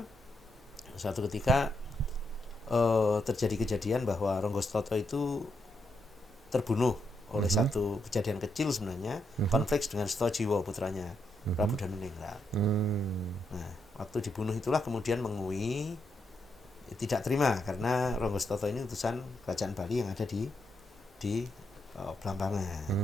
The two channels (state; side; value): normal; both; correlation 0.80